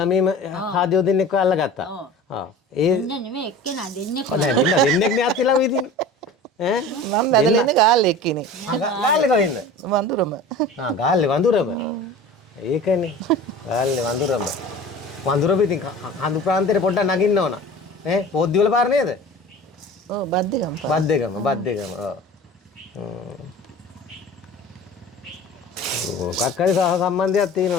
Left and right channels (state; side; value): normal; both; correlation 0.38